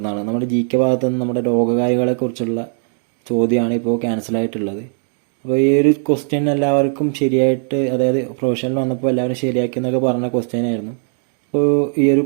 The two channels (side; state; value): left; silent; 58 dB below the other